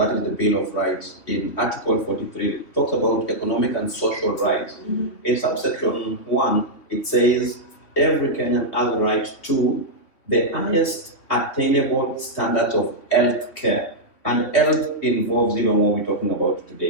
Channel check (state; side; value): late; right; 3.3 ms